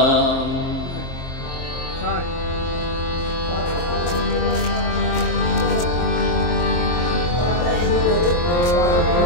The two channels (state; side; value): late; right; 23 ms